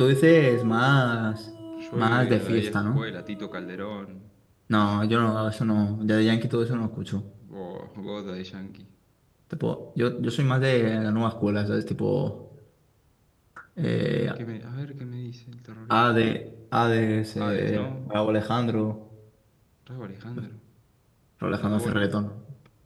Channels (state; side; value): identical; both; correlation 1.00